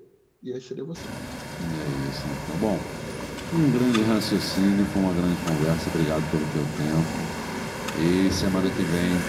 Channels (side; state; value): both; identical; correlation 1.00